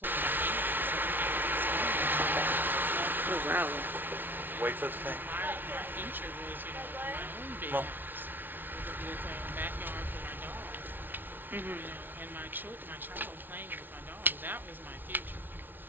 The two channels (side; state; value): left; late; 0.093 ms